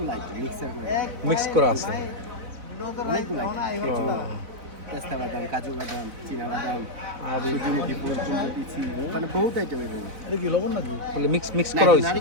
আইটেম মিক্সার করে মিক্স করা আছে। অনেকগুলো আইটেম, পেস্তা বাদাম, কাজু বাদাম, চীনা বাদাম, আর সূর্যমুখী ফুল, চুমকি, মানে বহুত আইটেম এর মধ্যে। এটা কি লবণ নাকি? বলে মিক্স মিক্স করা হয়েছে।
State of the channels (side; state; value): left; late; 4.0 ms